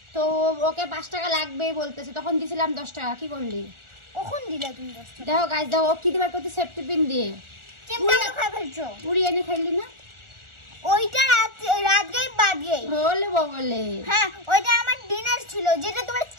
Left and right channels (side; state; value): left; late; 1.4 ms